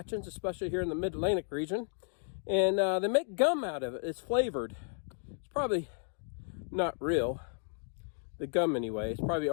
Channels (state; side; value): silent; right; 55 dB below the other